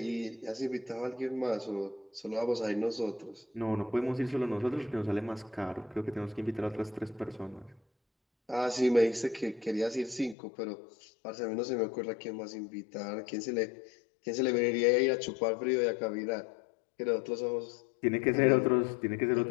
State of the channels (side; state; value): right; drops out; at 10.4 s